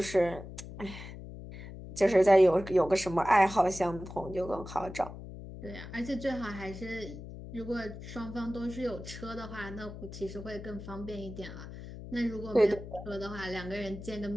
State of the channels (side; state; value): left; noise; hum, 12 dB below the sound